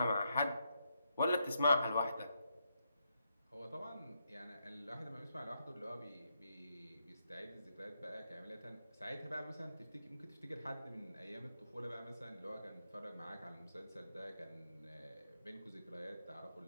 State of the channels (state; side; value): inverted; both; correlation -0.81